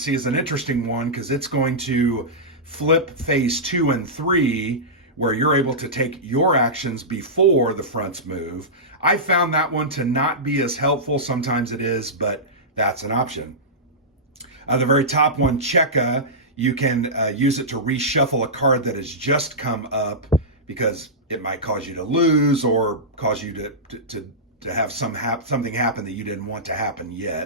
is an interesting one because it's going to flip phase 2 and 3, where you're able to take your actions before the fronts move. I found that one to not be as helpful. Sometimes it is, but that's an option. The very top one, Cheka, you can use it to reshuffle a card that has just come up because it might cause you to lose or cause you to have something happen that you didn't want to happen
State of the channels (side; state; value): both; normal; correlation -0.15